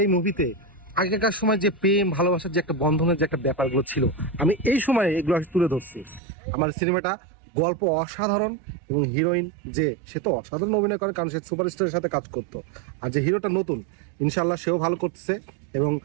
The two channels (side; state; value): left; drops out; at 6.2 s